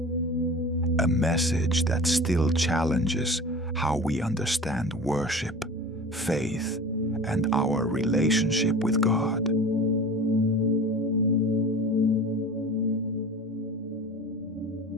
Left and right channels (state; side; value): normal; both; correlation 0.37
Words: A message that still challenges how we understand worship, faith, and our relationship with God.